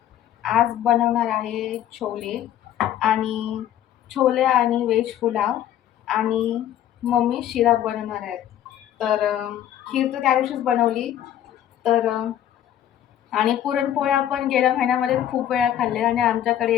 आज बनवणार आहे छोले आणि व्हेज पुलाव, आणि मम्मी शिरा बनवणार आहेत. तर खीर तर त्या दिवशीच बनवली. तर आणि पुरणपोळ्या पण गेल्या महिन्यामध्ये खूप वेळा खाल्ले. आणि आमच्याकडे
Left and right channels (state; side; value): quieter; right; 11.3 dB